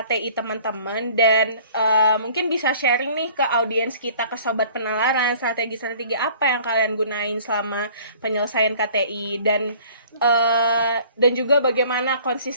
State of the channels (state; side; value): inverted; both; correlation -0.52